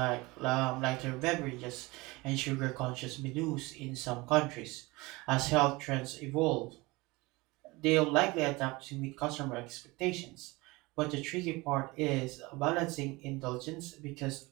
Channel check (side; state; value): left; quieter; 22.9 dB